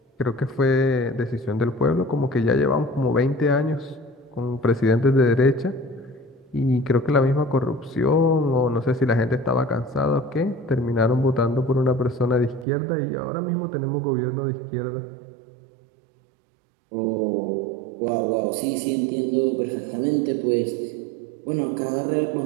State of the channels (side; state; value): left; drops out; at 12.7 s